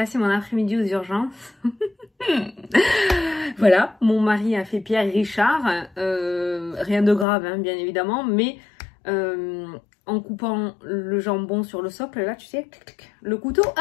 mon après-midi aux urgences. Voilà, mon mari a fait Pierre Richard, rien de grave hein, bien évidemment, mais en coupant le jambon sur le socle, là tu sais, le couteau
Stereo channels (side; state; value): right; drops out; at 7.2 s